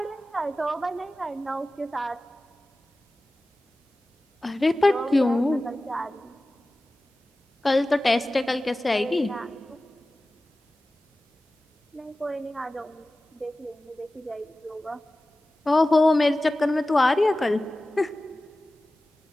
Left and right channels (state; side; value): normal; both; correlation 0.96